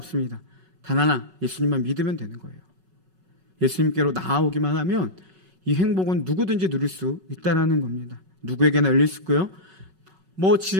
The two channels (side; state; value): left; late; 5.3 ms